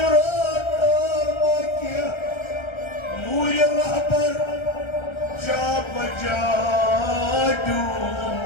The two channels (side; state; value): right; late; 1.3 ms